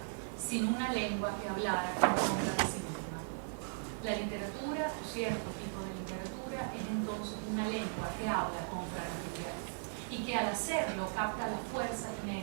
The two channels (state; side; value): silent; left; digital silence